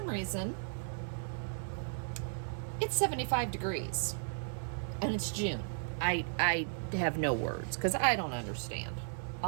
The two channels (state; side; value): silent; left; digital silence